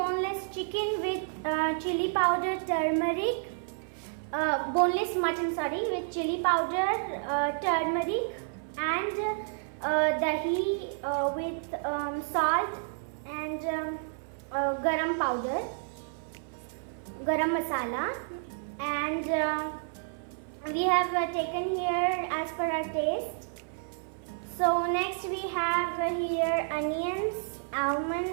chicken with chili powder, turmeric, boneless mutton with chili powder, turmeric and dahi with salt and garam powder, garam masala, and we have taken here as per our taste. So next we have here onions,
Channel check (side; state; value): left; silent; 56 dB below the other